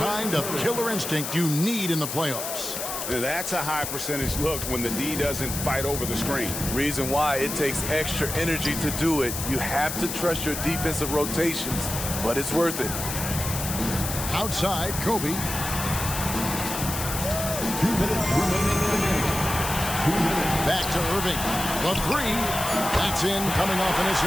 of killer instinct you need in the playoffs. That's a high percentage look when the D doesn't fight over the screen. Reason why it takes extra energy to do it. You have to trust your defensive rotations, but it's worth it. Outside, Kobe. 2 minutes remaining in the game. 2 minutes. Back to Irving. The three. That's in, coming off an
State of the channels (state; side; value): noise; left; hiss, 5 dB below the sound